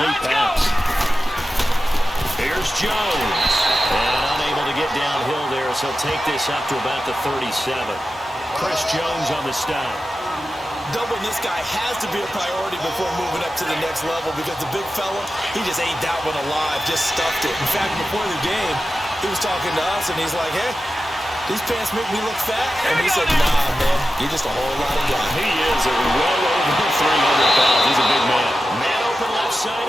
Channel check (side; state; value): both; normal; correlation 0.92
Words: pass. Here's Jones. And unable to get downhill there, so he'll take this up to about the 37. Chris Jones on the stop. Doubling this guy has to be a priority before moving up to the next level because the big fella, he just ate that one alive, just stuffed it. In fact, before the game, he was talking to us, and he's like, hey, these pants make me look fat. And we said, nah, man, you're just a whole lot of guy. He is well over 300 pounds. He's a big man. Man open left side